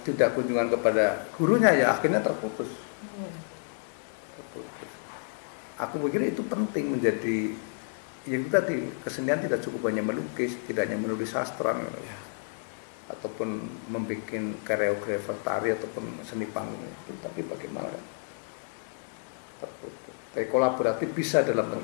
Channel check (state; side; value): silent; right; digital silence